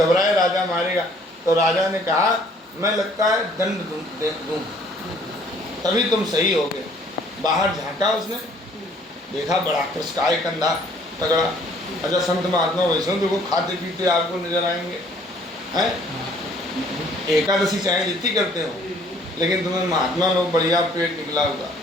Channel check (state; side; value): normal; both; correlation 0.59